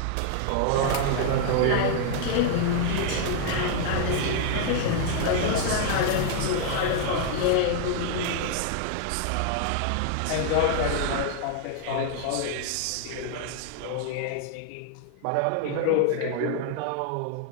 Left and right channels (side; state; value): both; different; correlation 0.00